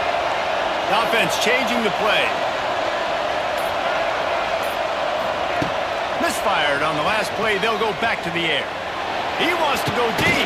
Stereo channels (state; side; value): identical; both; correlation 1.00